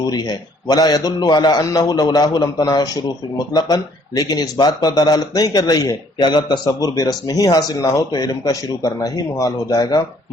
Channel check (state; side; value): normal; both; correlation 0.62